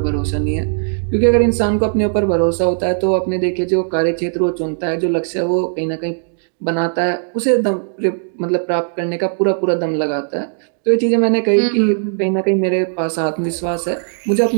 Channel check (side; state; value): left; silent; digital silence